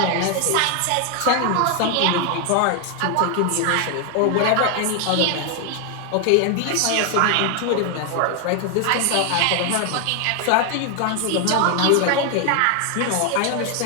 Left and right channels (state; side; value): different; both; correlation 0.01